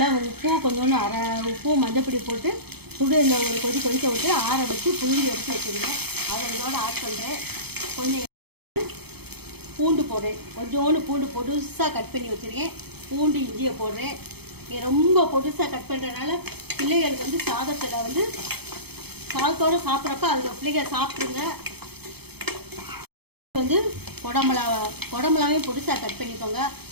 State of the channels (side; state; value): left; late; 0.97 ms